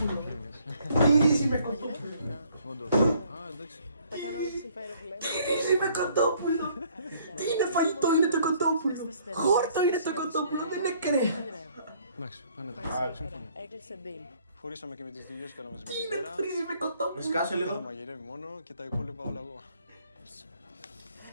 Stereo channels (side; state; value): both; inverted; correlation -0.62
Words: Τι ρύζι με κοτόπουλο. Όντως. Εντάξει. Τα κάνω να συμφέρει που λέμε. Ρύζι με κοτόπουλο. Τι είναι φαγητό, είναι το κοτόπουλο. Χόρτο είναι το κοτόπουλο, δεν είναι κρέα. Εντάξει, φαίνεται. Σύμφωνα. Έκλεισε deal. Χωρίσαμε και με τις δουλειές, κάναμε μαζί με Τι τη είναι Βέρα. ρύζι με κοτόπουλο. Σκάσε Θα λίγο. μαγειρεύει μόνο και τα υπόλοιπα όλα εγώ.